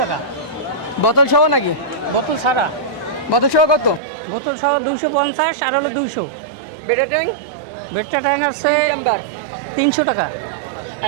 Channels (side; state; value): left; drops out; at 4.0 s